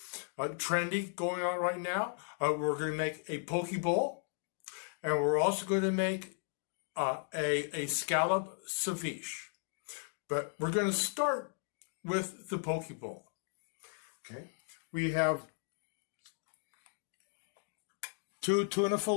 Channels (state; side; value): silent; right; 54 dB below the other